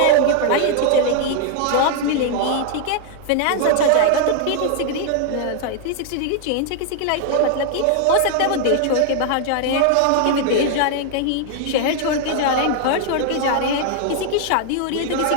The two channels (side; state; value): both; different; correlation 0.00